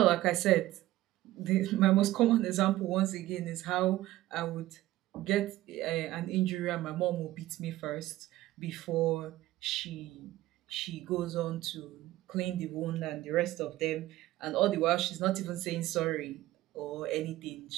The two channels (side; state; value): left; quieter; 16.0 dB